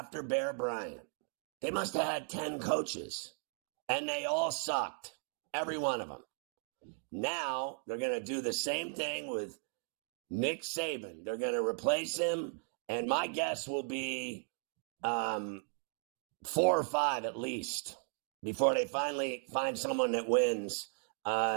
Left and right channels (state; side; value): silent; left; 54 dB below the other